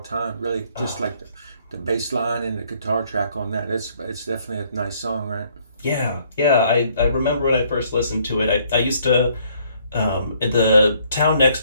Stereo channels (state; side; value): inverted; both; correlation -0.65